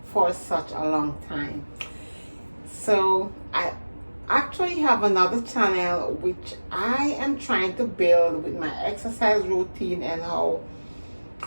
for such a long time. So I actually have another channel which I am trying to build with my exercise routine and how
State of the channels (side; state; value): both; inverted; correlation -1.00